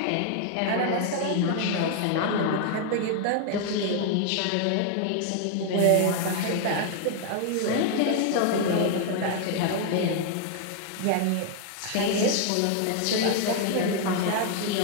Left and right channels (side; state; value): both; different; correlation 0.00